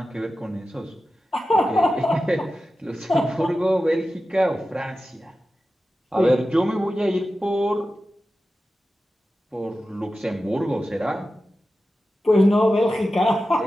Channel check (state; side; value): normal; both; correlation 0.93